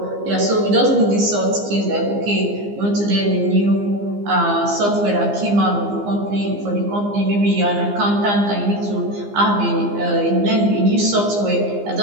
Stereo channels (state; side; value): late; left; 15 ms